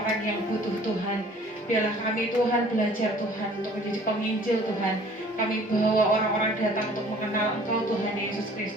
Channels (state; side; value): normal; both; correlation 0.52